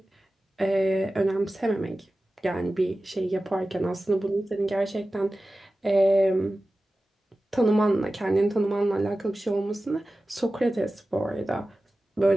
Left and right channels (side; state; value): both; normal; correlation 0.95